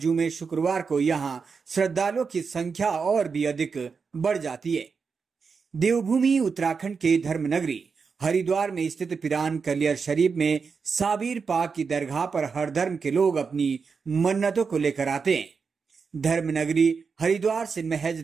शुक्रवार को यहां श्रद्धालुओं की संख्या और भी अधिक बढ़ जाती है। देवभूमि उत्तराखंड के धर्मनगरी हरिद्वार में स्थित पिरान कलियर शरीफ में साबिर पाक की दरगाह पर हर धर्म के लोग अपनी मन्नतों को लेकर आते हैं। धर्मनगरी हरिद्वार से महज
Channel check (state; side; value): quieter; left; 5.4 dB